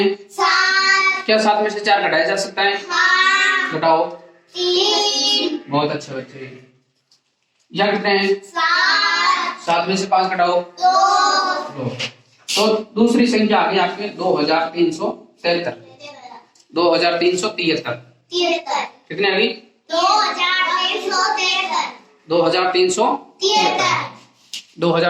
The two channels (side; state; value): both; identical; correlation 1.00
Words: 7, क्या 7 में से 4 घटाया जा सकता है, हाँ, घटाओ 3, बहुत अच्छे बच्चे। यहाँ कितने हैं 7, 7 में से 5 घटाओ 2, 2। तो दूसरी संख्या आ गई आपके 2373, 2373 कितने आ गई 2373,